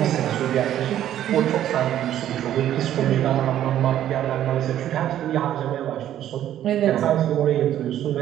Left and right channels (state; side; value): quieter; left; 11.6 dB